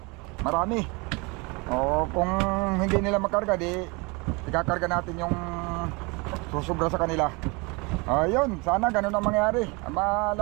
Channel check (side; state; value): left; quieter; 28.0 dB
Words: marami. Oh, kung hindi nila makarga, di ikakarga natin yung susubra sa kanila. Ayun, sana ganun ang mangyari.